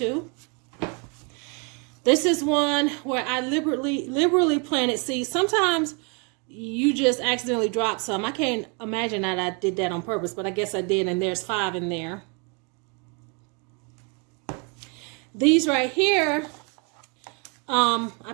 This is one where I liberally planted seeds. Sometimes you just accidentally drop some. I can't imagine that I did that on purpose, but I guess I did, and there's 5 in there. These right here,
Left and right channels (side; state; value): left; quieter; 34.3 dB